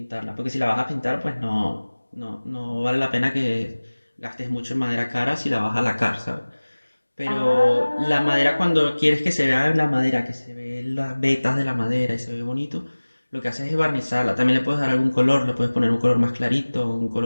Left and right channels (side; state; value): both; inverted; correlation -1.00